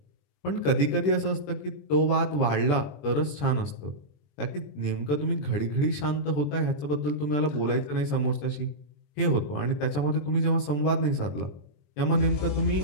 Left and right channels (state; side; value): late; right; 21 ms